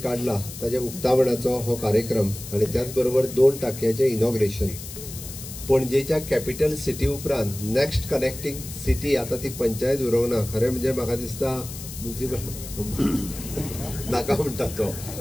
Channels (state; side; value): noise; left; hiss, 12 dB below the sound